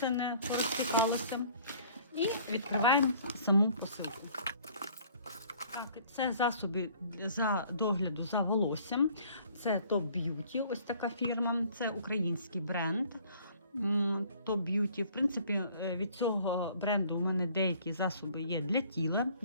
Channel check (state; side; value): inverted; both; correlation -0.55